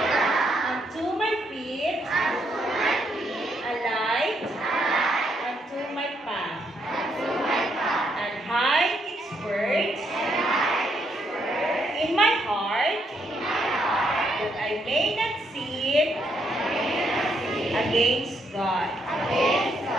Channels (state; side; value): normal; both; correlation 0.75